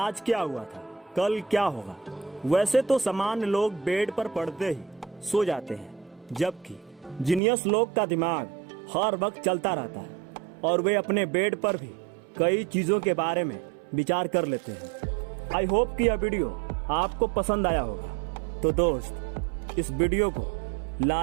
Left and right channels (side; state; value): left; drops out; at 7.4 s